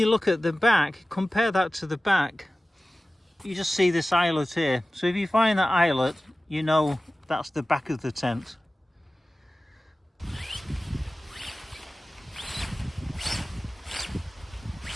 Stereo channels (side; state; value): both; normal; correlation 0.96